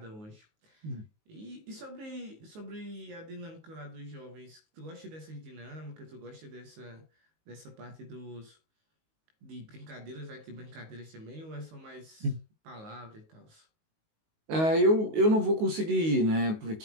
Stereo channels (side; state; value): left; late; 19 ms